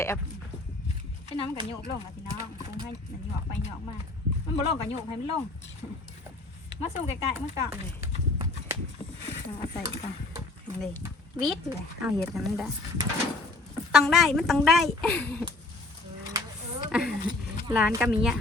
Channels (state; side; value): quieter; right; 3.2 dB